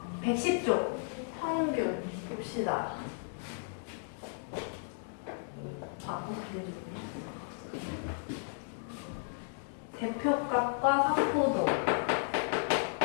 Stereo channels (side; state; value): right; silent; digital silence